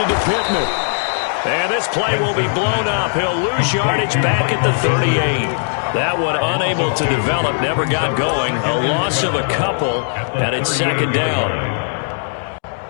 to Pittman. And this play will be blown up. He'll lose yardage back at the 38. That one unable to develop, never got going. A loss of a couple, and it's second down.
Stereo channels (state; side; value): silent; right; digital silence